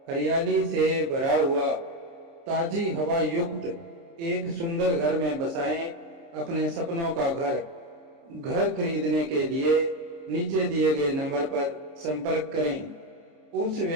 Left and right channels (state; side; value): late; left; 29 ms